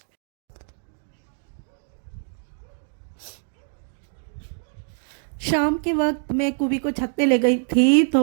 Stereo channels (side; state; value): left; silent; 55 dB below the other